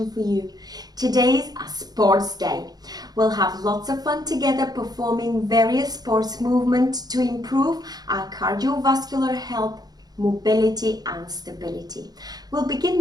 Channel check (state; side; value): late; left; 0.19 ms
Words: for you. Today's a sports day. We'll have lots of fun together performing various sports movements to improve our cardiovascular health, mobility and stability. We'll begin